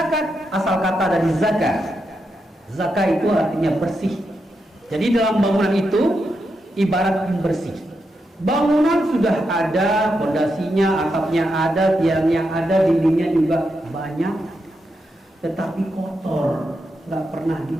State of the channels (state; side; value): normal; both; correlation 0.85